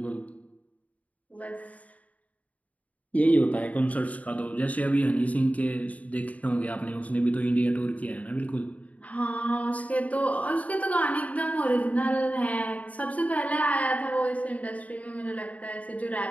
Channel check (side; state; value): right; late; 0.070 ms